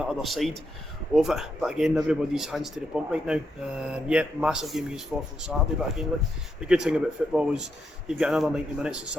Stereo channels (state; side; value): normal; both; correlation 0.81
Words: other side of it, but again, everybody's hands to the pump right now. Massive game against Forfar on Saturday, but again, look, the good thing about football is you've got another 90 minutes on